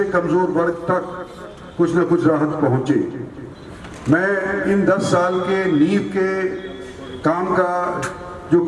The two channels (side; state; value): both; identical; correlation 1.00